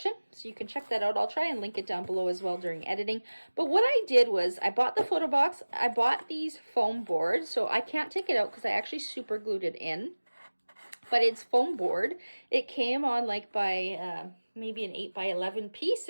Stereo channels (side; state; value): both; inverted; correlation -1.00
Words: so you can check that out. I'll try and link it down below as well during editing. But what I did was I bought the photo box. I bought these foam boards, so I can't take it out because I actually super glued it in. But it's foam board. It came on like by maybe an 8x11 piece,